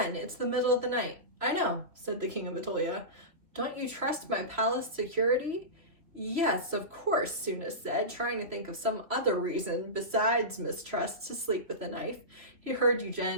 it's the middle of the night. I know, said the King of Atolia. Don't you trust my palace security? Yes, of course, Sophos said, trying to think of some other reason besides mistrust to sleep with a knife. He heard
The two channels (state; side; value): late; left; 3.0 ms